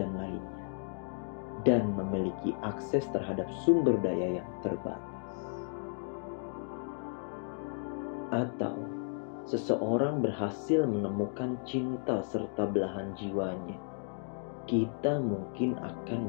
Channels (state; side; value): silent; right; 55 dB below the other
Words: lainnya, dan memiliki akses terhadap sumber daya yang terbatas. Atau seseorang berhasil menemukan cinta serta belahan jiwanya, kita mungkin